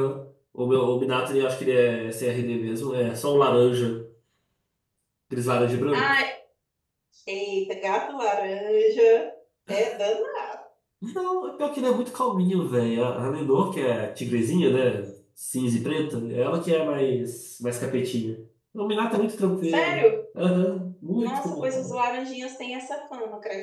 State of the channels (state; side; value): identical; both; correlation 1.00